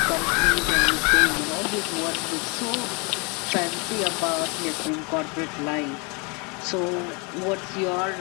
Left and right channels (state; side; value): quieter; right; 31.2 dB